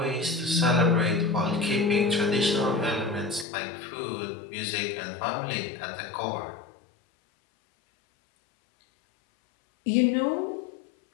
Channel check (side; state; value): right; drops out; at 3.5 s